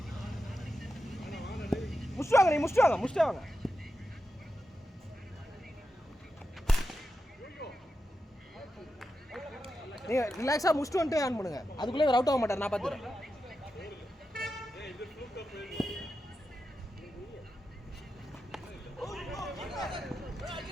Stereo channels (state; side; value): normal; both; correlation 0.89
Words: முடிச்சிட்டு வாங்க. நீங்க ரிலாக்ஸா முடிச்சிட்டு வந்துட்டு ஆன் பண்ணுங்க. அதுக்குள்ளே அவர் அவுட் ஆக மாட்டார். நான் பார்த்துறேன்.